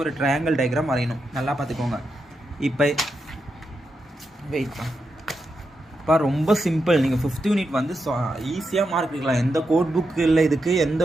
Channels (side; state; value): both; normal; correlation 0.86